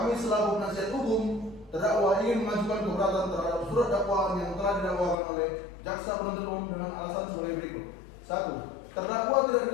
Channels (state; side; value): drops out; right; at 5.2 s